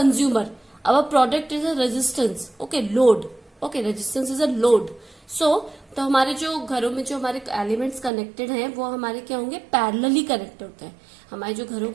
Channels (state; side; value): drops out; left; at 8.1 s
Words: Our product is a resistance. Okay, load. Okay, resistance is a load. So तो हमारे जो घरों में जो हमारे एलिमेंट्स कनेक्टेड हैं वो हमारे क्या होंगे? पैरेलली कनेक्टेड होते हैं. हमारी जो घरों